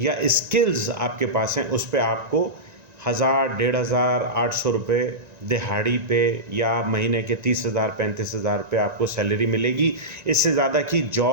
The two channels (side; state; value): left; late; 1.9 ms